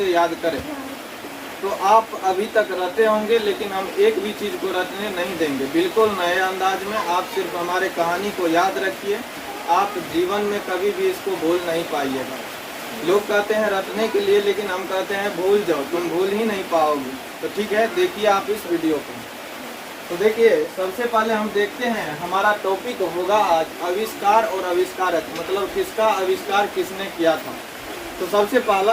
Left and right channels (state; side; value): identical; both; correlation 1.00